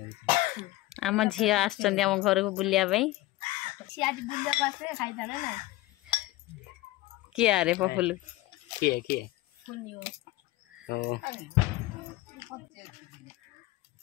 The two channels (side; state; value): right; quieter; 17.9 dB